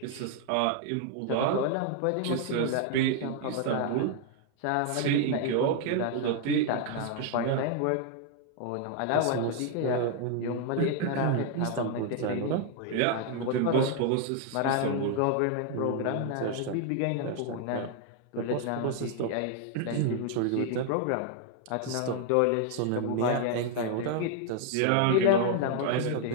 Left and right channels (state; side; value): different; both; correlation 0.00